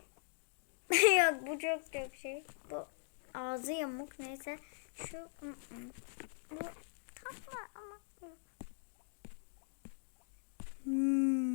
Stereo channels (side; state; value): right; silent; digital silence